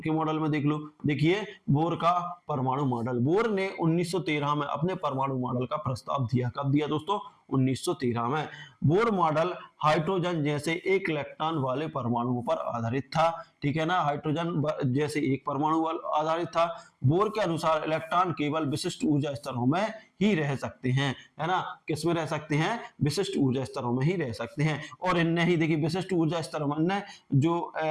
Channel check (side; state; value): both; identical; correlation 1.00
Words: के मॉडल में देख लो। देखिए बोर का परमाणु मॉडल, बोर ने 1913 में अपने परमाणु मॉडल का प्रस्ताव दिया। कब दिया दोस्तों, 1913 में। बोर मॉडल हाइड्रोजन जैसे एक इलेक्ट्रॉन वाले परमाणुओं पर आधारित था, ठीक है ना। हाइड्रोजन जैसे एक परमाणु आधारित था। बोर के अनुसार इलेक्ट्रॉन केवल विशिष्ट ऊर्जा स्तरों में ही रह सकते हैं, है ना। किसमें रह सकते हैं, विशिष्ट ऊर्जा स्तरों में ही रह सकते हैं। और इनने ही, देखिए विशिष्ट ऊर्जा स्तरों में जो